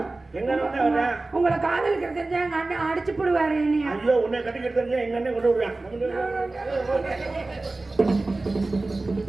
எங்க அண்ணன் வர்றேன்? உங்களை காதலிக்கிற தெரிஞ்சா எங்க அண்ணன் அடிச்சு போடுவாரு என்னைய. ஐயோ உன்னை கட்டிக்கிட்டு தெரிஞ்சா எங்க அண்ணன் கொண்டு விடுறான்.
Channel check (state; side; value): quieter; left; 3.2 dB